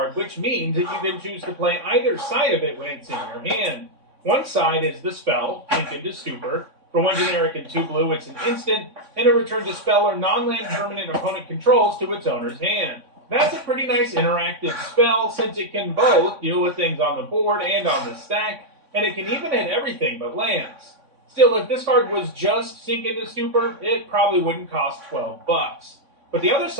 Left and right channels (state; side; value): late; left; 3.6 ms